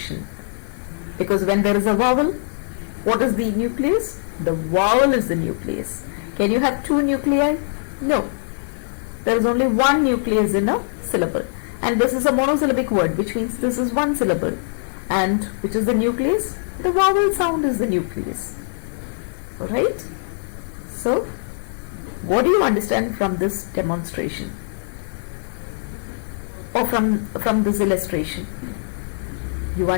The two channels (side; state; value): right; silent; digital silence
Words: Because when there is a vowel, what is the nucleus? The vowel is the nucleus. Can you have two nuclei? No. There is only one nucleus in a syllable. And this is a monosyllabic word, which means this is one syllable. And which is the nucleus? The vowel sound is the nucleus. Alright? So, what do you understand from this demonstration? Or from this illustration? You